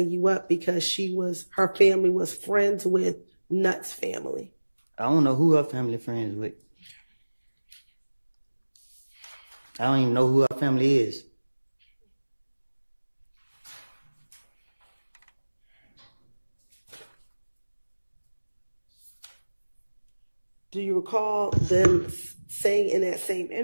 you up because her family was friends with Nutt's family? I don't know who her family friends with. I don't even know who her family is. Do you recall them saying in that same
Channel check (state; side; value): inverted; both; correlation -1.00